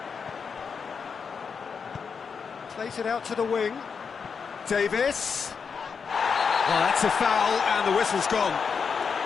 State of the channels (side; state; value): right; quieter; 5.9 dB